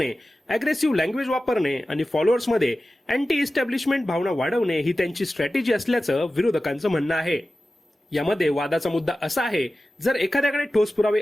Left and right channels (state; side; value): normal; both; correlation 0.95